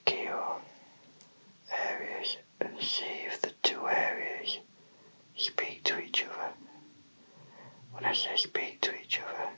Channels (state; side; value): inverted; both; correlation -1.00